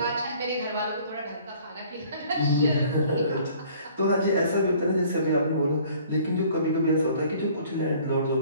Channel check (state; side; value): inverted; both; correlation -0.54